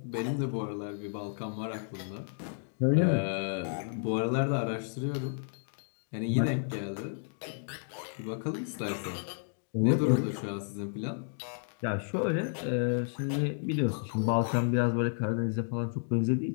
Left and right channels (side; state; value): right; silent; digital silence